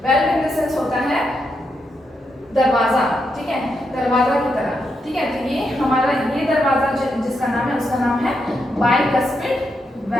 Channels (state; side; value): normal; both; correlation 0.82